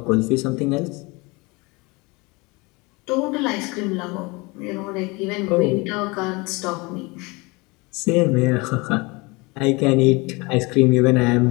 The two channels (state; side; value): quieter; right; 25.9 dB